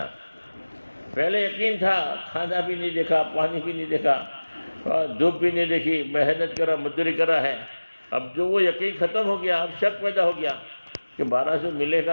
پہلے یقین تھا، کھانا بھی نہیں دیکھا، پانی بھی نہیں دیکھا، دھوپ بھی نہیں دیکھی، محنت کرا، مزدوری کرا ہے، اب جو وہ یقین ختم ہو گیا، اب شک پیدا ہو گیا کہ 1200 ملے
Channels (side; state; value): both; inverted; correlation -1.00